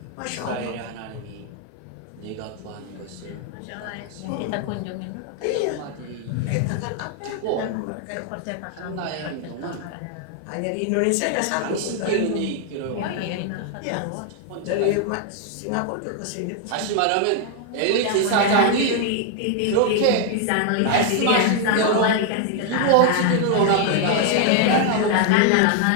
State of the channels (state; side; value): different; both; correlation 0.00